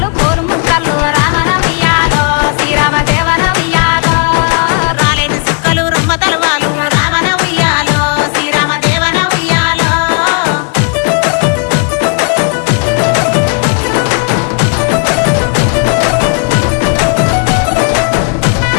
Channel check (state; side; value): quieter; right; 39.4 dB